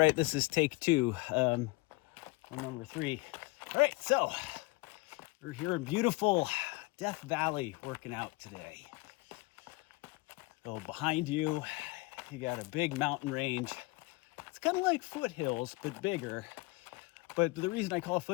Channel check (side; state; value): right; quieter; 23.3 dB